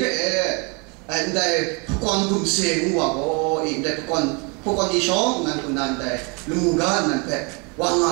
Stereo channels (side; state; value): left; quieter; 32.1 dB